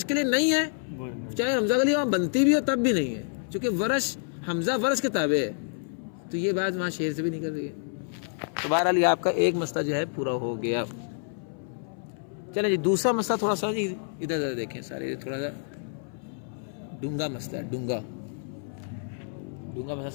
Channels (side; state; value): right; silent; 59 dB below the other